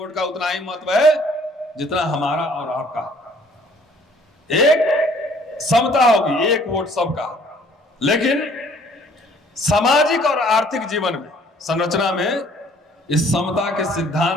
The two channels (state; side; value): normal; both; correlation 0.58